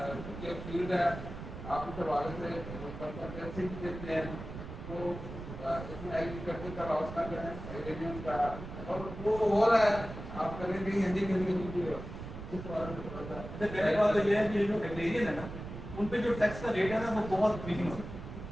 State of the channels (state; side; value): noise; right; rumble, 10 dB below the sound